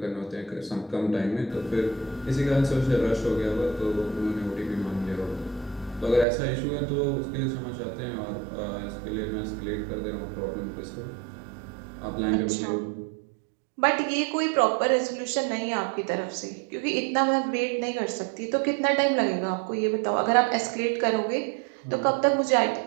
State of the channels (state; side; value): drops out; left; at 6.2 s